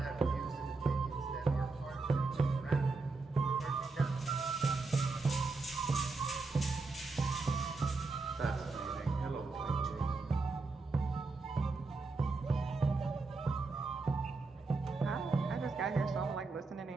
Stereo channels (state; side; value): quieter; left; 3.8 dB